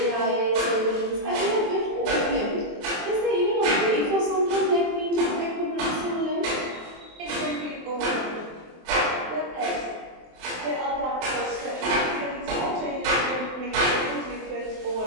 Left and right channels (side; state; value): left; late; 23 ms